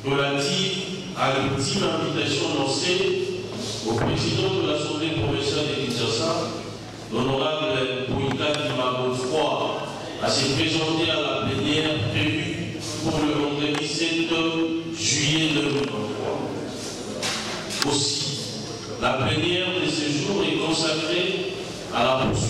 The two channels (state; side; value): identical; both; correlation 1.00